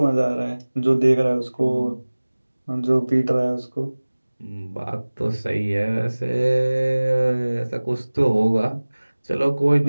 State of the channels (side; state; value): both; inverted; correlation -1.00